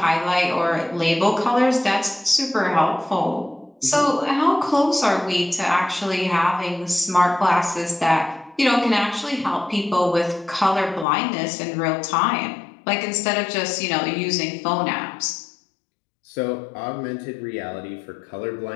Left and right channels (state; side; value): drops out; right; at 11.1 s